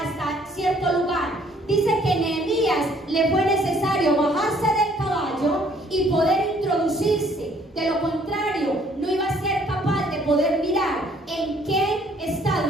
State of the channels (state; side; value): normal; both; correlation 0.62